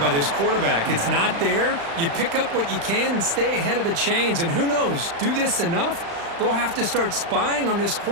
this quarterback. It's not there. You pick up what you can and stay ahead of the chains. And who knows, do this enough, they'll have to start spying on this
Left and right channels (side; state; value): left; late; 35 ms